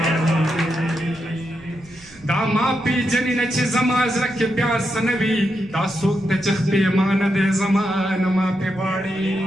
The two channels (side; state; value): right; noise; rumble, 24 dB below the sound